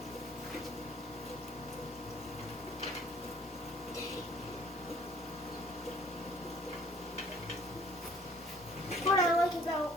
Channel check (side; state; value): both; normal; correlation 0.56